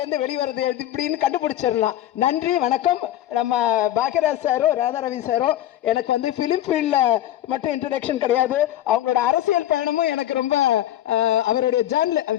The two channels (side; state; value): right; quieter; 12.8 dB